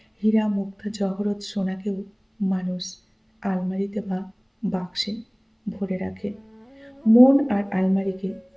হীরা, মুক্তা, জহরত, সোনাকেও মানুষ আলমারিতে বা বাক্সে ভরে রাখে। মন আর আলমারিকে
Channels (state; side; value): identical; both; correlation 1.00